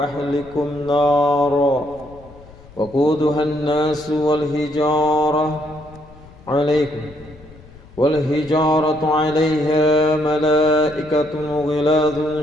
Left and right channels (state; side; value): noise; left; rumble, 22 dB below the sound